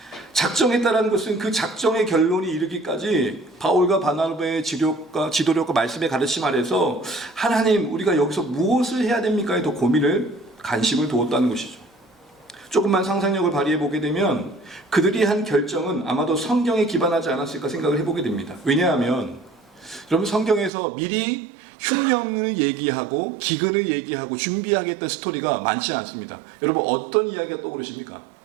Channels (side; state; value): left; drops out; at 20.7 s